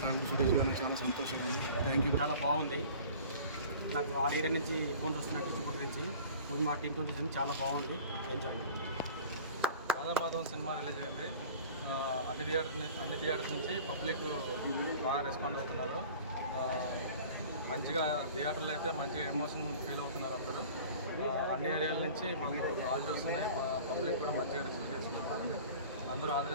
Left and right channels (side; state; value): both; inverted; correlation -0.43